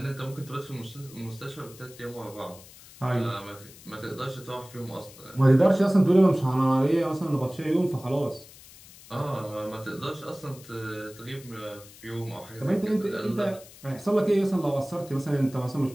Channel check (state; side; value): noise; left; hiss, 20 dB below the sound